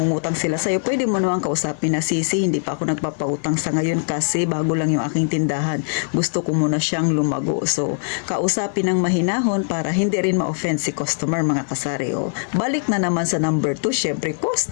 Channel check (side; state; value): right; silent; 58 dB below the other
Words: sila sa'yo. Pwede mo naman kausapin na, sisi, hindi pa ako nagpapautang sa ngayon kasi bago lang yung aking tindahan. Gusto ko muna siyang lumago. So, kausapin ng mahinahon para hindi rin ma-offend si customer, mga kasari. O, balik na naman sa number 2, syempre,